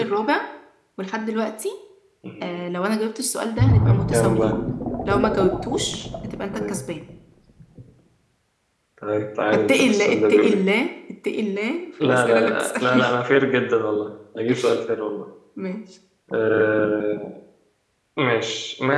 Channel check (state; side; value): identical; both; correlation 1.00